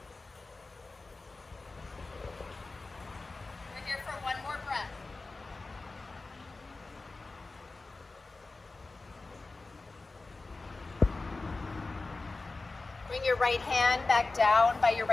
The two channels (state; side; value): quieter; right; 3.5 dB